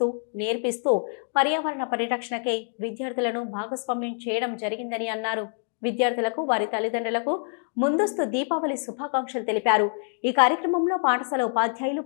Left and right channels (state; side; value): silent; right; 61 dB below the other